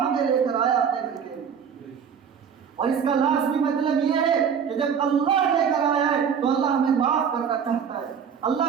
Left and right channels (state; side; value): quieter; left; 7.3 dB